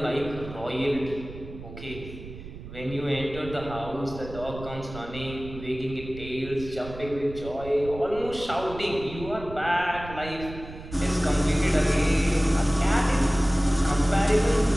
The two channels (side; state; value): right; noise; rumble, 13 dB below the sound